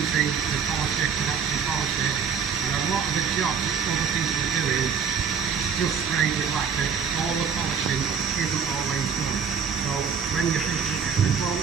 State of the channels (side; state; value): left; quieter; 6.7 dB